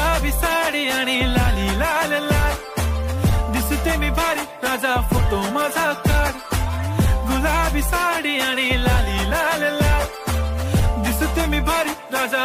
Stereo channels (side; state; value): both; identical; correlation 1.00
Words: साडी आणि लाली लाल लाल दिसते मी भारी राजा फोटो माझा काढ गुलाबी साडी आणि लाली लाल लाल दिसते मी भारी